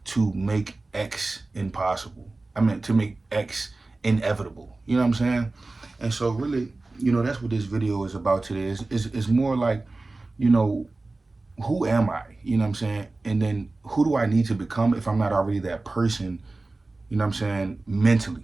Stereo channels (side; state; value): left; quieter; 3.3 dB